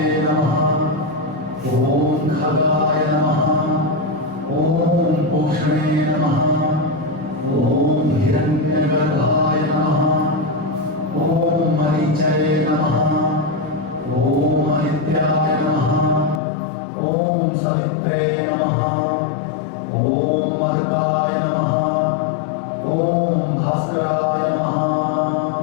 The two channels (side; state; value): right; drops out; at 16.4 s